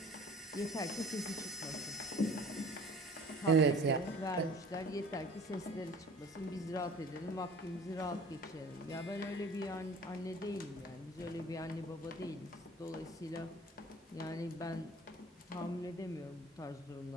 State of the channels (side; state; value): both; normal; correlation 0.47